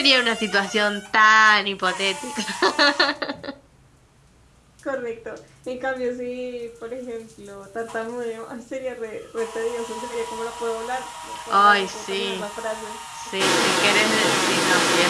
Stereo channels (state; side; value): identical; both; correlation 1.00